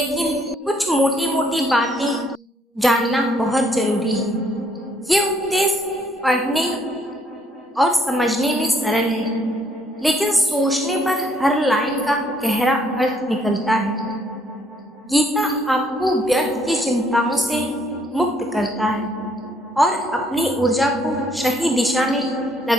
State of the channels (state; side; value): normal; both; correlation 0.67